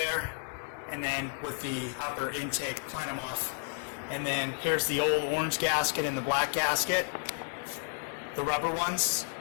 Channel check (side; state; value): right; silent; 57 dB below the other